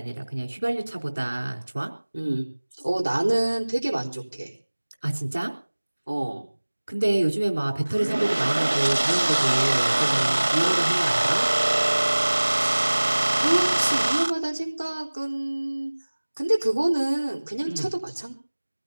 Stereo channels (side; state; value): both; inverted; correlation -1.00